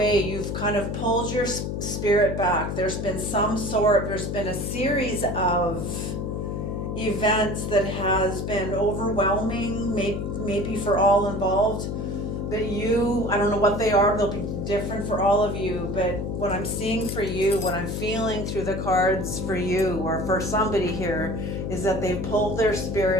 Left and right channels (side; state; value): left; noise; hum, 3 dB below the sound